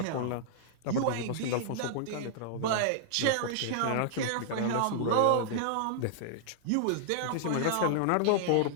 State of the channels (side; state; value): both; different; correlation -0.01